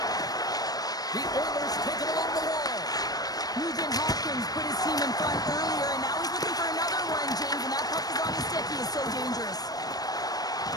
The Oilers take it along the wall. Nugent Hopkins put his team in front earlier, and now he's looking for another one, James, and that puck is on his stick. He is so dangerous.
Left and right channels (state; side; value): late; right; 0.19 ms